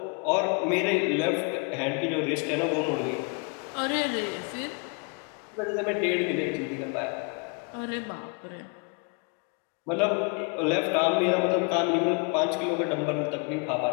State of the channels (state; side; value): quieter; right; 35.3 dB